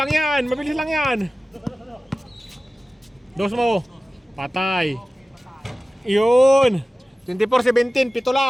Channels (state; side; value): normal; both; correlation 0.96